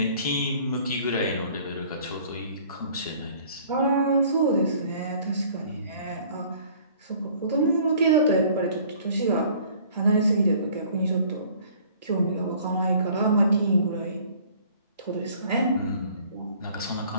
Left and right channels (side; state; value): both; inverted; correlation -0.54